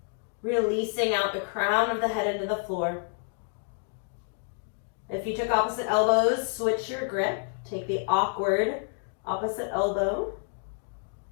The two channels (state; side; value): silent; right; 58 dB below the other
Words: Releasing out the crown of the head into the floor. If you took opposite elbows, switch your grip. Take the awkward opposite elbow.